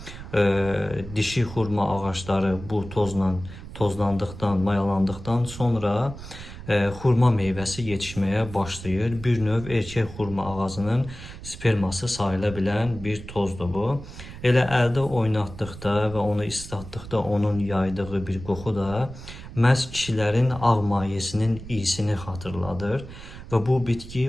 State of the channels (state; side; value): noise; right; rumble, 13 dB below the sound